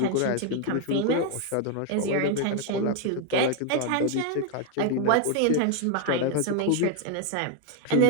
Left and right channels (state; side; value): different; both; correlation 0.01